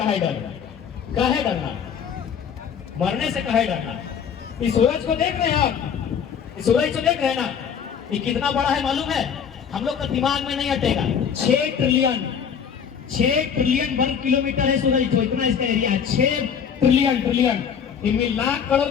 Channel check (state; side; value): quieter; right; 7.4 dB